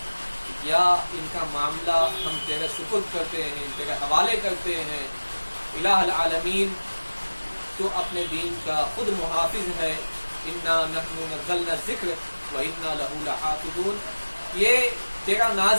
یا ان کا معاملہ ہم تیرے سپرد کرتے ہیں، تیرے حوالے کرتے ہیں. الہ العالمین تو اپنے دین کا خود محافظ ہے. انا نحن نزلنا الذکر وانا لہ لحافظون. یہ تیرا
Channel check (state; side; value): inverted; both; correlation -1.00